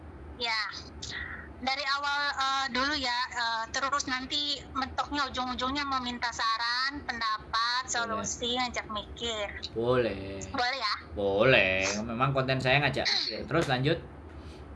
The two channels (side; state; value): both; identical; correlation 1.00